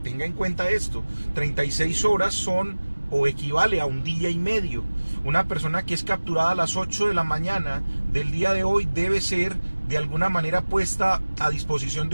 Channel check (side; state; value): both; inverted; correlation -1.00